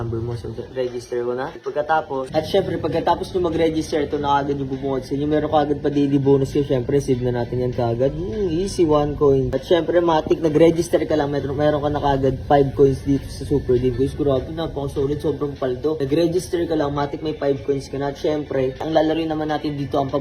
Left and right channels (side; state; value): both; identical; correlation 1.00